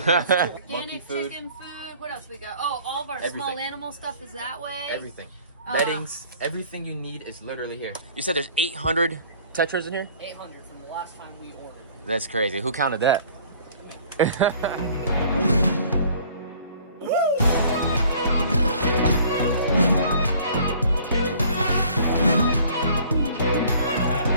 Monkey food. Chicken food. What else we got? Oh, all of our small animal stuff is that way. Everything. Beddings, everything you need is literally here. You said there's 800 tetras in here? 800 from the last time we ordered. That's crazy. Who counted that?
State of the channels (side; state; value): both; inverted; correlation -0.53